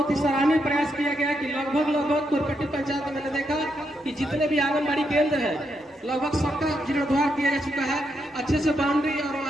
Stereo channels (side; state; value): both; normal; correlation 0.80